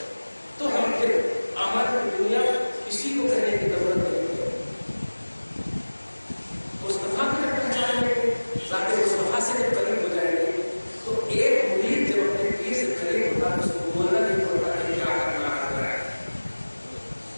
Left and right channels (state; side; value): inverted; both; correlation -1.00